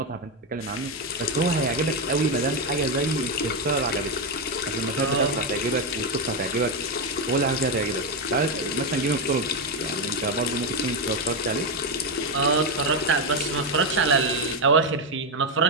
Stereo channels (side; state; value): both; normal; correlation 0.07